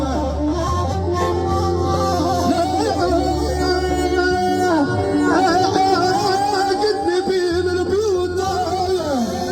قدني بين البيوت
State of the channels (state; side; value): identical; both; correlation 1.00